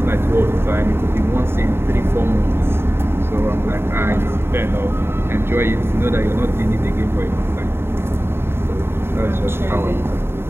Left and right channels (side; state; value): left; late; 0.11 ms